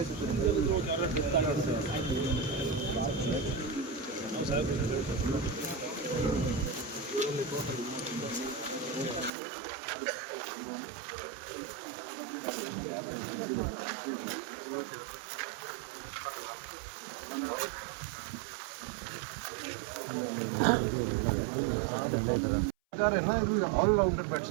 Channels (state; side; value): drops out; left; at 9.3 s